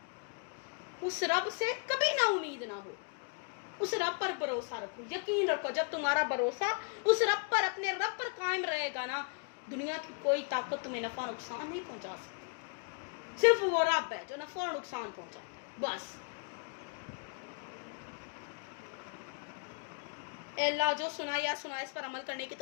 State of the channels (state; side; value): quieter; right; 37.3 dB